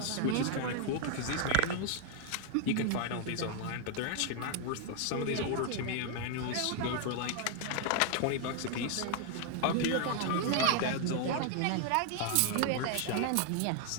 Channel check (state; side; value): different; both; correlation 0.00